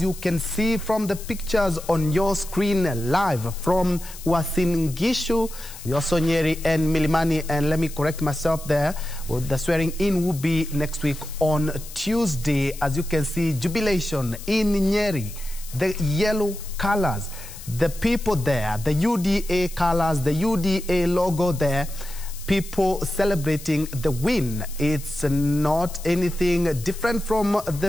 you can see from the pictures on your screen live from Uasin Gishu, Yosonyeri, and Milimani, and let me correct myself there, the swearing in will be next week on Tuesday. As you can see, jubilation in Nyeri, the yellow colors, the people there, the UDA colors, the UDA logo there, people celebrating the win. It's not anything different from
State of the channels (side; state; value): left; noise; hiss, 15 dB below the sound